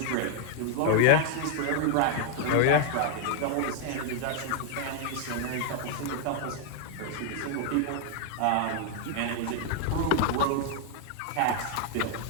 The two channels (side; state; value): both; different; correlation 0.00